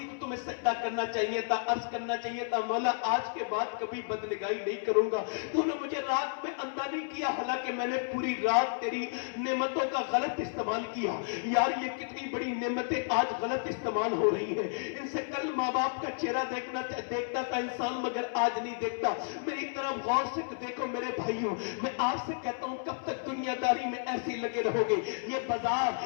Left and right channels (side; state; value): right; silent; 57 dB below the other